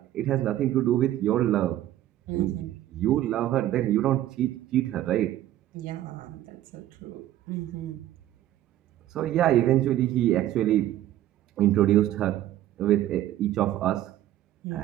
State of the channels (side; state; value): left; quieter; 13.3 dB